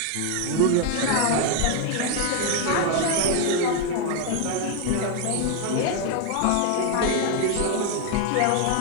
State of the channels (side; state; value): both; different; correlation 0.01